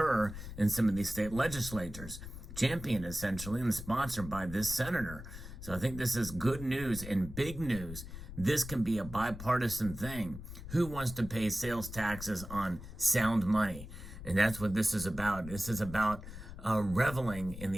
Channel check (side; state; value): left; noise; rumble, 11 dB below the sound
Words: in some of these state legislatures, championed essentially and sponsored by this senator. So I think this is good news and big news. This can be a bipartisan thing. Who wants to pay sales taxes on sound money? And that's what this is about. This is about reveling in